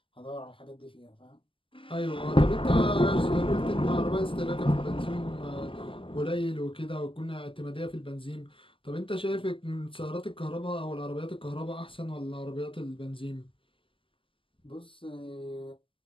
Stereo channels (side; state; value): right; late; 0.25 ms